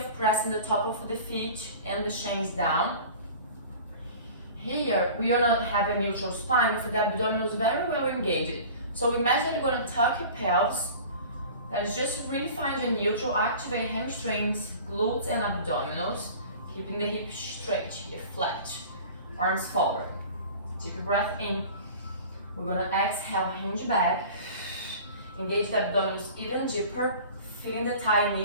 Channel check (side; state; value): both; inverted; correlation -0.41